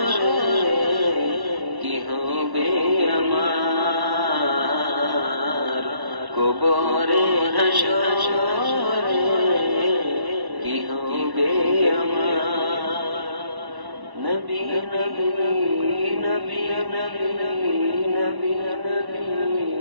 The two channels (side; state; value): left; late; 1.1 ms